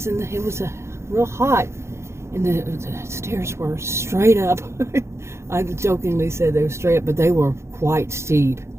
real hot, and the stairs were straight up. I jokingly said they were straight up, but they were quite steep.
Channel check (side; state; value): left; late; 0.13 ms